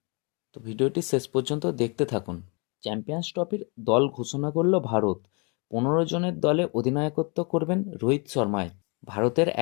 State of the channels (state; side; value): quieter; right; 33.0 dB